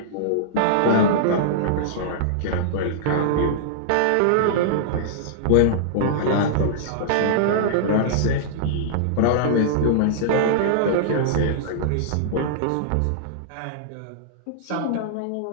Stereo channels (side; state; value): both; different; correlation -0.02